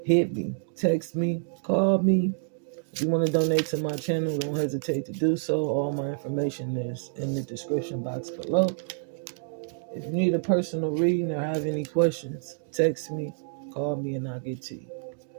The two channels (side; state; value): left; silent; digital silence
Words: hit me, text me, call me. If you want to donate to my channel, don't hesitate to do so. All my information is in the description box below. If you need a personal reading or have any questions, text me, call me, and I'll get to you.